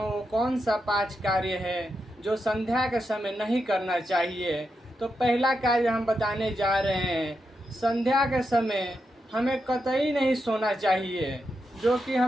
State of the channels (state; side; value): normal; both; correlation 0.86